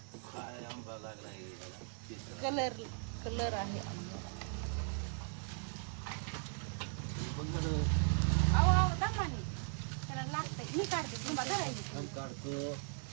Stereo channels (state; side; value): silent; left; 52 dB below the other